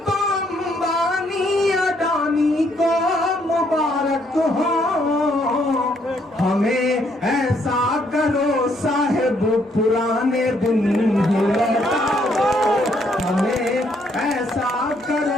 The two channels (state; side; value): normal; both; correlation 0.70